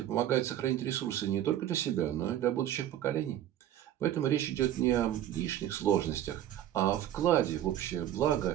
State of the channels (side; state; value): left; quieter; 11.7 dB